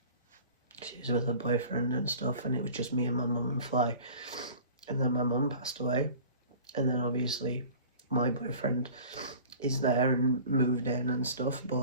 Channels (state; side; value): inverted; both; correlation -0.44